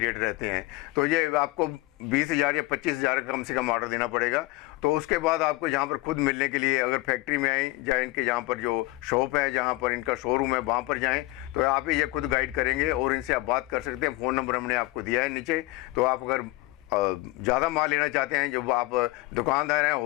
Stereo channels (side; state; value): right; quieter; 20.9 dB